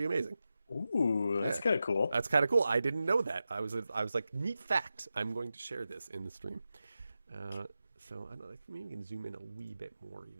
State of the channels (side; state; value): both; inverted; correlation -0.91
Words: amazing. Ooh, that's kind of cool. That's kind of cool. I didn't know that. I was like, neat fact. I'm going to share this in the stream. So I don't know, maybe we can zoom in a wee bit more